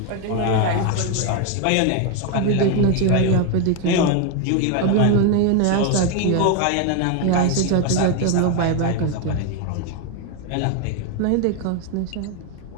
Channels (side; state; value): both; different; correlation 0.01